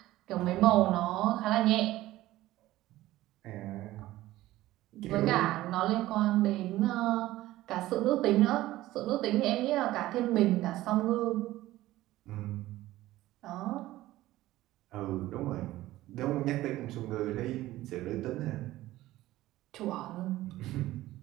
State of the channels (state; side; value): quieter; left; 16.1 dB